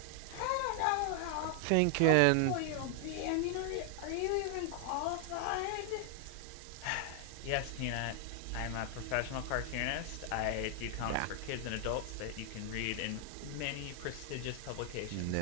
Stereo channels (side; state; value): both; different; correlation 0.00